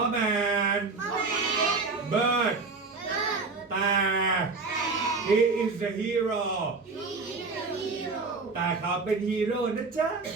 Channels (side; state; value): left; quieter; 4.1 dB